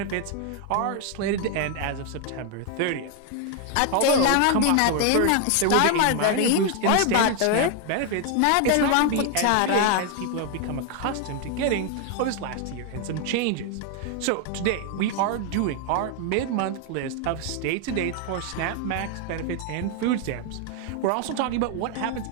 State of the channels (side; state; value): both; different; correlation 0.00